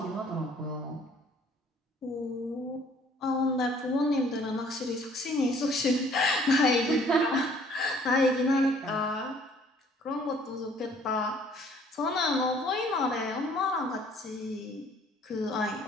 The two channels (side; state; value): both; normal; correlation 0.58